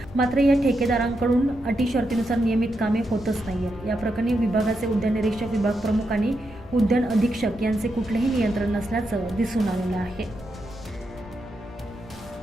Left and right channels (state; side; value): normal; both; correlation 0.84